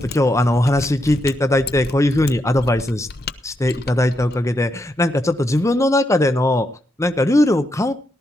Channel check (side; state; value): both; normal; correlation 0.81